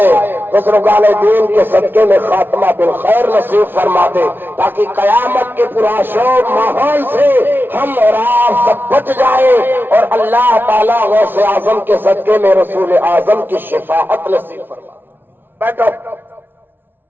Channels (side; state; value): left; late; 0.10 ms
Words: بزرگان دین کے صدقے میں خاتمہ بالخیر نصیب فرما دے، تاکہ قیامت کے پرآشوب ماحول سے ہم اور آپ سب بچ جائیں، اور اللہ تعالیٰ غوث اعظم کے صدقے میں رسول اعظم کی شفاعت نصیب فرما دے۔ بیٹھو،